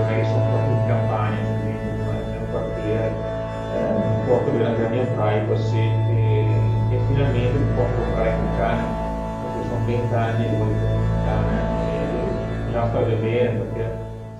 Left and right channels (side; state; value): both; identical; correlation 1.00